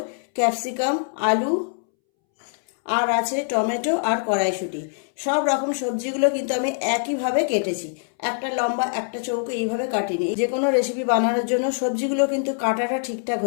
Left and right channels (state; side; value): silent; right; 63 dB below the other